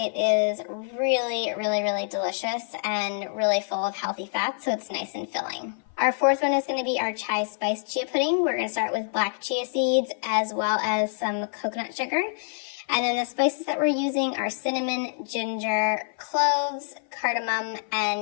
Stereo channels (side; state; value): right; silent; 55 dB below the other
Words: is really, really, really delicious and really full of healthy fats, so it's nice and filling. Our fourth one is going to be our chai spice chia pudding. We're going to start with black chia seeds as well as some coconut sugar. And then the spices that we're using are cinnamon, ginger, cloves, cardamom,